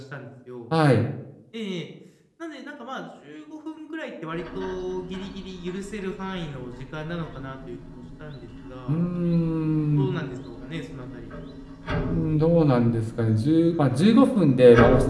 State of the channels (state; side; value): identical; both; correlation 1.00